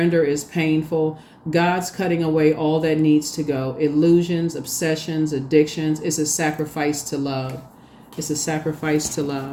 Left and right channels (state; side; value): identical; both; correlation 1.00